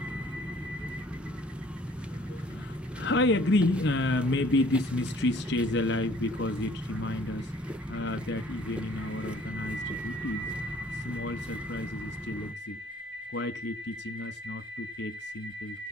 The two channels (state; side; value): normal; both; correlation 0.57